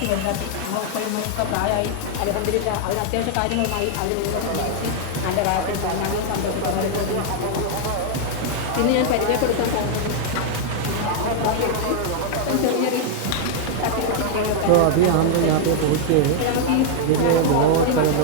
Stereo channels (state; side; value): different; both; correlation 0.00